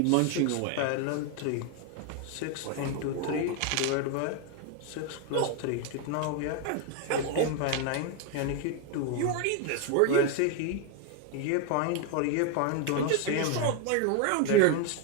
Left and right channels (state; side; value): different; both; correlation 0.01